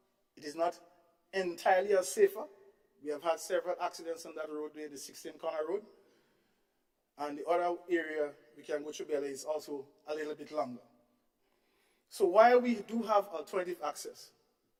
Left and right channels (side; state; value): both; identical; correlation 1.00